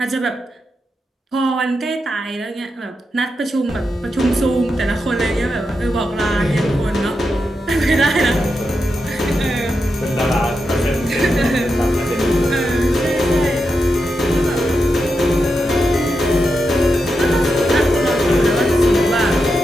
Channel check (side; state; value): both; normal; correlation 0.87